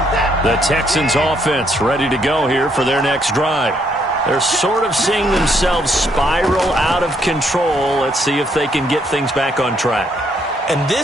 The Texans offense ready to go here for their next drive. They're sort of seeing themselves spiral out of control. Let's see if they can get things back on track. And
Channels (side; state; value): both; normal; correlation 0.71